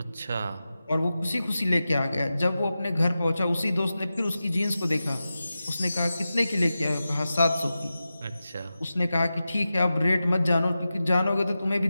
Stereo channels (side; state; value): both; inverted; correlation -0.93